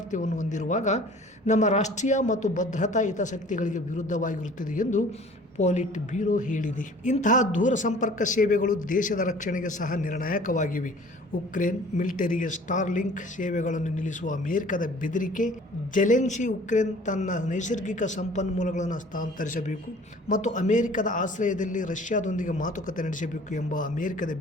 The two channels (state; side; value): normal; both; correlation 0.49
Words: ಹೊಂದಿರುವಾಗ ನಮ್ಮ ರಾಷ್ಟ್ರೀಯ ಮತ್ತು ಭದ್ರತಾ ಹಿತಾಸಕ್ತಿಗಳಿಗೆ ವಿರುದ್ಧವಾಗಿರುತ್ತದೆ ಎಂದು ಪೊಲಿಟ್ ಬ್ಯೂರೋ ಹೇಳಿದೆ. ಇಂತಹ ದೂರ ಸಂಪರ್ಕ ಸೇವೆಗಳು ದೇಶದ ರಕ್ಷಣೆಗೆ ಸಹ ನಿರ್ಣಾಯಕವಾಗಿವೆ. ಉಕ್ರೇನ್ ಮಿಲಿಟರಿಗೆ ಸ್ಟಾರ್ಲಿಂಕ್ ಸೇವೆಗಳನ್ನು ನಿಲ್ಲಿಸುವ ಅಮೆರಿಕದ ಬೆದರಿಕೆ, ಜೆಲೆನ್ಸಿ ಉಕ್ರೇನ್ ತನ್ನ ನೈಸರ್ಗಿಕ ಸಂಪನ್ಮೂಲಗಳನ್ನು ಹಸ್ತಾಂತರಿಸಬೇಕು ಮತ್ತು ಅಮೆರಿಕದ ಆಶ್ರಯದಲ್ಲಿ ರಷ್ಯಾದೊಂದಿಗೆ ಮಾತುಕತೆ ನಡೆಸಬೇಕು ಎಂಬ ಅಮೆರಿಕದ